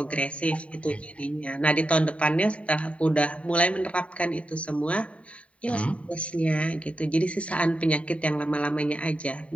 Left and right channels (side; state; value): right; late; 0.064 ms